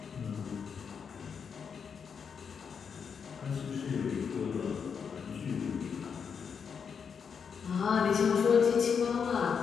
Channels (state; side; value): quieter; right; 6.5 dB